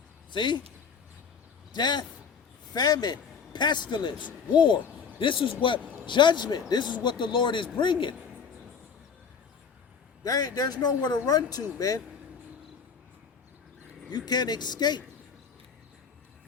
See? Death, famine, pestilence, war. This is what judgment, this is what the Lord is bringing. There's nowhere to run to, man. You can't escape.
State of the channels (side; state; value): right; quieter; 6.3 dB